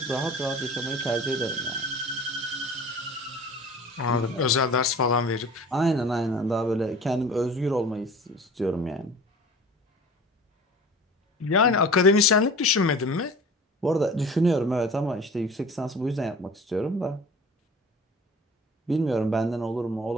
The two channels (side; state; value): both; normal; correlation 0.42